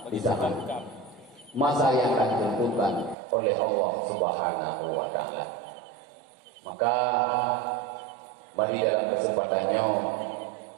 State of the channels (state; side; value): drops out; left; at 3.2 s